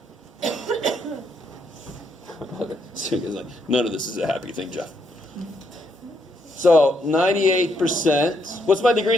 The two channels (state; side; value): normal; both; correlation 0.75